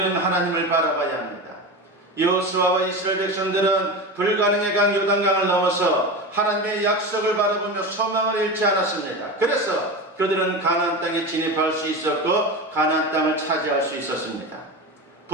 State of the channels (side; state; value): both; normal; correlation 0.24